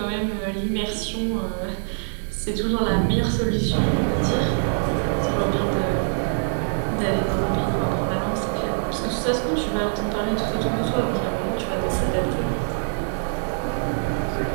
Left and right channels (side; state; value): left; silent; digital silence